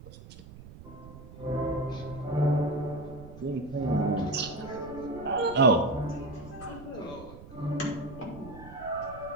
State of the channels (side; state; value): right; noise; rumble, 16 dB below the sound